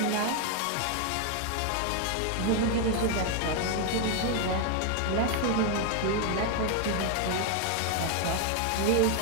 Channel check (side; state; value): both; different; correlation 0.01